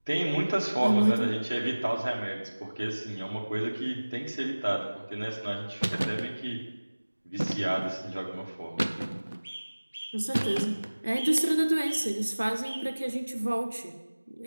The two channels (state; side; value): inverted; both; correlation -1.00